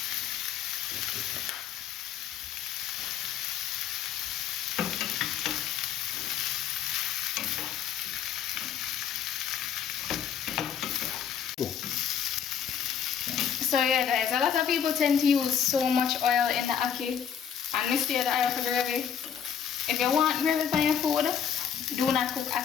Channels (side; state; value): right; quieter; 8.2 dB